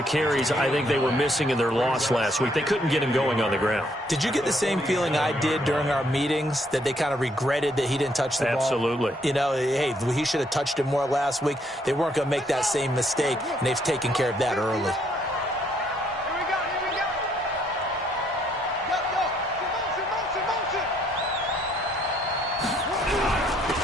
carries I think they were missing in their loss last week. They couldn't get him going on the ground. Did you get the same feeling I did during our meetings, that they kind of regretted that he didn't touch the ball? Absolutely. You know, hey, he should have touched it more last week. They weren't going to make that same mistake, and they've taken care of that early.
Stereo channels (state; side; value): normal; both; correlation 0.69